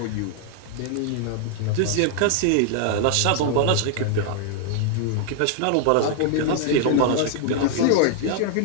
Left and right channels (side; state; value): both; different; correlation 0.00